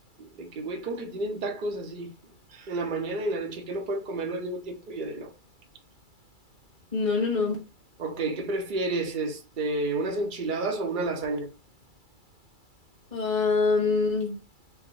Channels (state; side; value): late; left; 2.3 ms